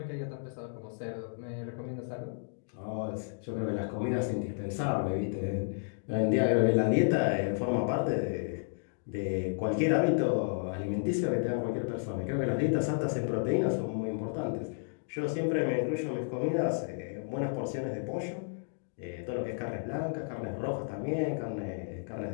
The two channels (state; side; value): silent; right; digital silence